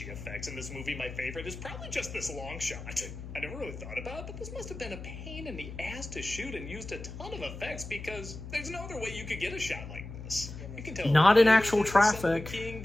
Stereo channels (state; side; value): noise; left; hum, 11 dB below the sound